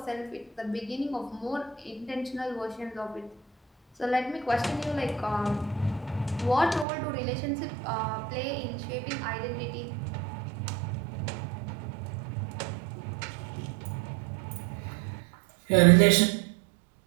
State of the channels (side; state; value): left; drops out; at 6.9 s